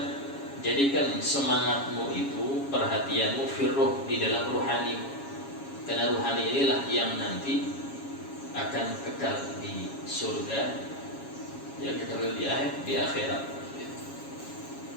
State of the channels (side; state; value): right; late; 7.3 ms